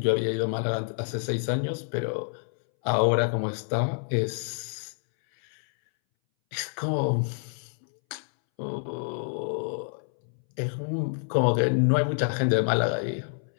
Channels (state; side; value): silent; right; 60 dB below the other